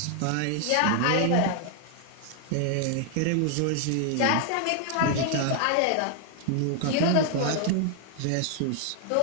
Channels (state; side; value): different; both; correlation 0.00